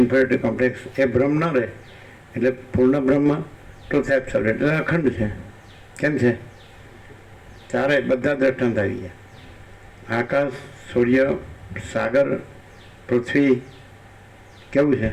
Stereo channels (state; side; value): identical; both; correlation 1.00